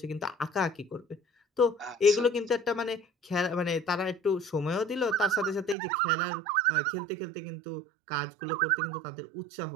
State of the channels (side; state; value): left; drops out; at 5.8 s